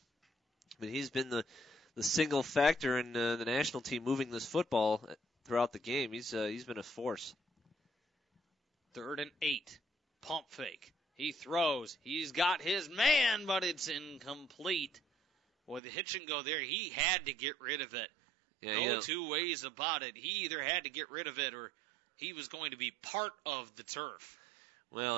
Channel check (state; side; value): drops out; left; at 15.8 s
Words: But he's been the single factor in the national team moving this football throughout the game. He's been a force. 3rd and 8, pump fake. He throws. He's got his man, but it's incomplete. Boy, the hitch and go there. He had to get rid of it. No two ways about it. He either had to get rid of it or he was going to be part of the turf. Well,